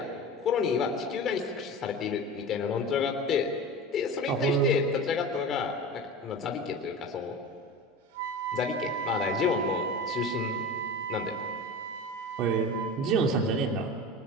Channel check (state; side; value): normal; both; correlation 0.31